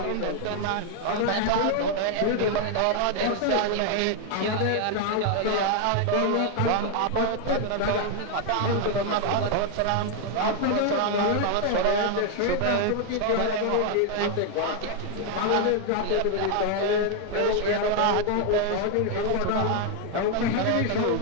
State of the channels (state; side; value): different; both; correlation 0.00